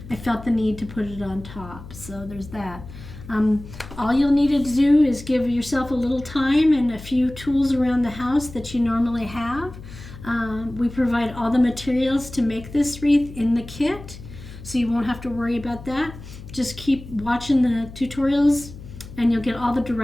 I felt the need to put it on top. So there's that. All you'll need to do is give yourself a little time and a few tools around the house that you normally have. We provide all the materials to make this wreath in the kit, so you won't have to worry about that. Just keep watching the tutorials and you'll get all the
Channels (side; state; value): left; noise; hum, 15 dB below the sound